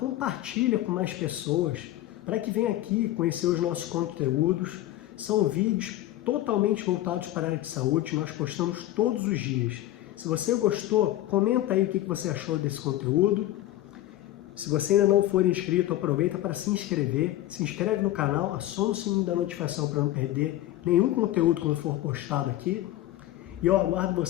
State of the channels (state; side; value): quieter; right; 14.6 dB